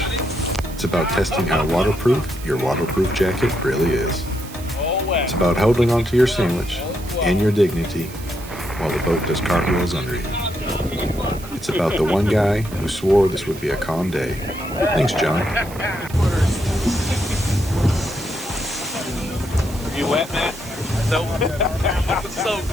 It's about testing how waterproof your waterproof jacket really is. It's about holding onto your sandwich and your dignity while the boat does cartwheels under you. It's about the one guy who swore this would be a calm day. Thanks, John. You wet, man? Nope. So.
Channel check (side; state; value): right; noise; hiss, 17 dB below the sound